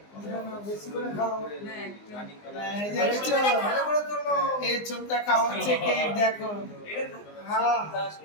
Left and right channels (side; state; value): right; late; 19 ms